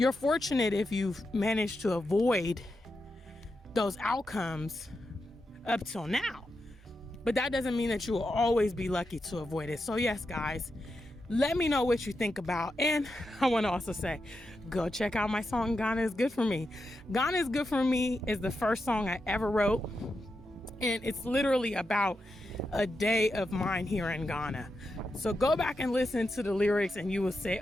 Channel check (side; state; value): both; normal; correlation 0.87